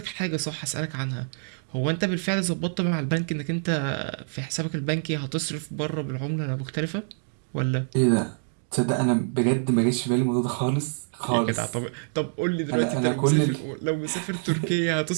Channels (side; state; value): left; silent; digital silence